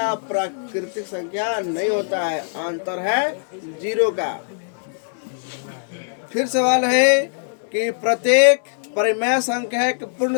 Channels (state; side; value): silent; right; digital silence